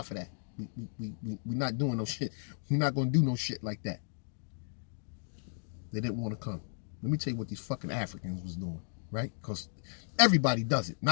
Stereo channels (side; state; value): right; silent; digital silence